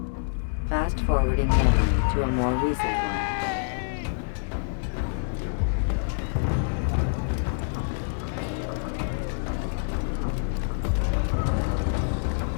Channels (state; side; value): silent; right; digital silence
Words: Fast-forwarding memory to a more recent one.